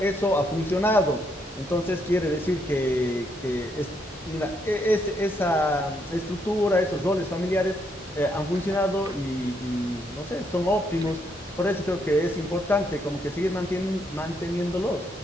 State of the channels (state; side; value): normal; both; correlation 0.75